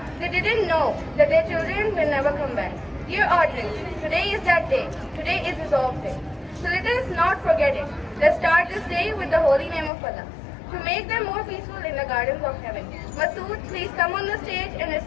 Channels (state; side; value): drops out; right; at 9.9 s